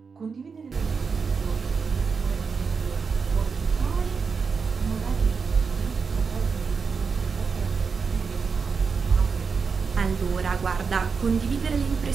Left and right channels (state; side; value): quieter; left; 5.4 dB